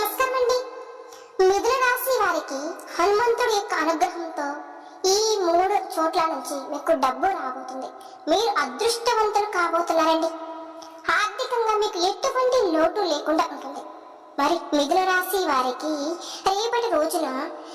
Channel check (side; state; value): both; identical; correlation 1.00